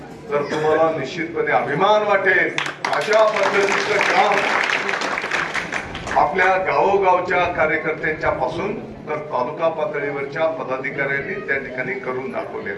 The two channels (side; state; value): both; identical; correlation 1.00